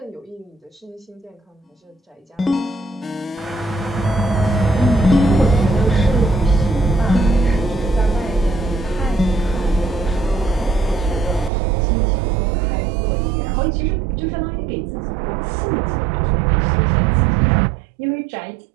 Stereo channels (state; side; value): drops out; left; at 11.5 s